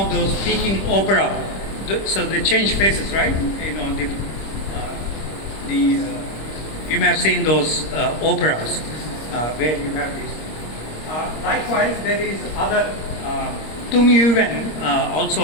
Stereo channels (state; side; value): late; right; 26 ms